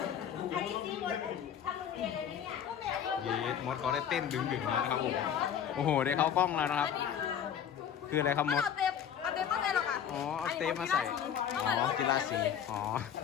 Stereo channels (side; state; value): right; quieter; 8.8 dB